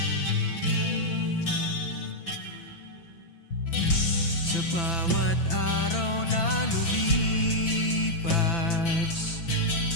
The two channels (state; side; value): late; right; 6.0 ms